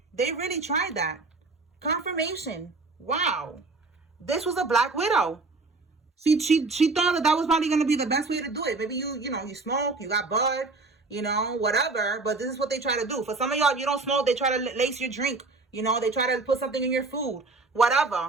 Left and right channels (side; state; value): left; quieter; 3.7 dB